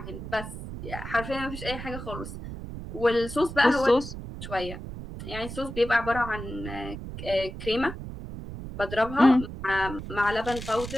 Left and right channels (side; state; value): right; noise; rumble, 9 dB below the sound